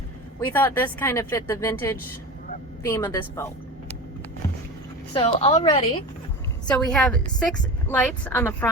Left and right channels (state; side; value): normal; both; correlation 0.29